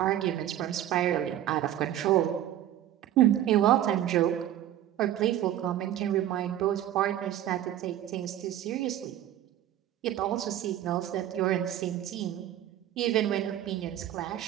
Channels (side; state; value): left; quieter; 12.1 dB